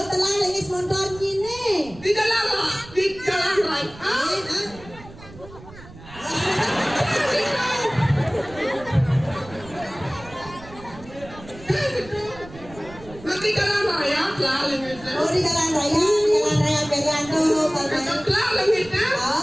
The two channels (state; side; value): noise; right; rumble, 18 dB below the sound